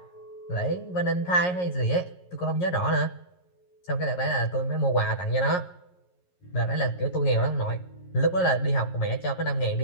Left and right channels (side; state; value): right; late; 11 ms